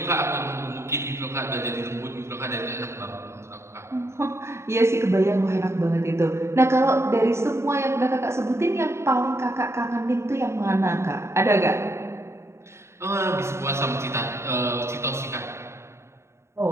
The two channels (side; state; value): left; late; 0.13 ms